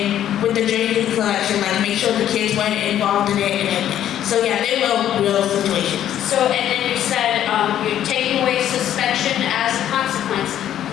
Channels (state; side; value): quieter; right; 11.1 dB